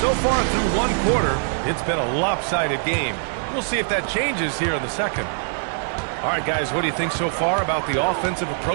far through 1 quarter, it's been a lopsided game. We'll see if that changes here in the second. All right, guys, what do you think so far about the offensive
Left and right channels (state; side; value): silent; left; digital silence